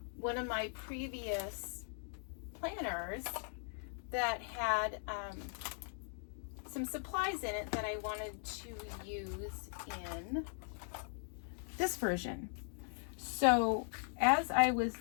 one of my previous planners that had some supplies in it that I wanted to use in this version. So as I was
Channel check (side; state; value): right; silent; 51 dB below the other